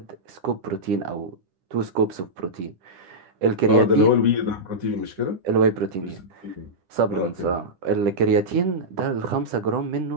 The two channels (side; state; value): left; late; 10 ms